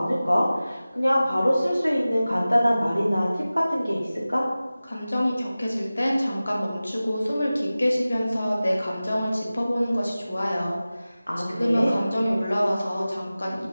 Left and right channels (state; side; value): inverted; both; correlation -0.97